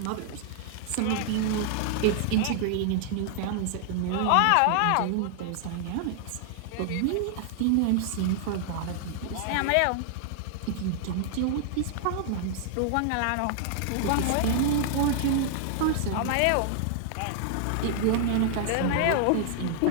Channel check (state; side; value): different; both; correlation -0.01